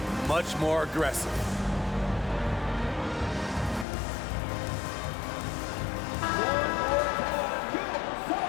much more aggressive.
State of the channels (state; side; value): drops out; right; at 3.9 s